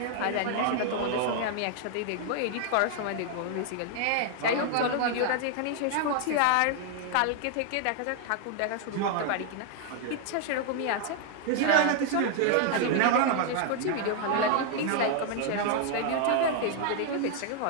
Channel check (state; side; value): different; both; correlation 0.00